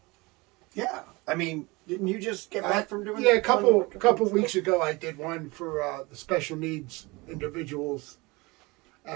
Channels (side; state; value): left; quieter; 24.3 dB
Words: Yeah. I mean, didn't you just get back from doing a couple weeks ago I did one for the special needs individuals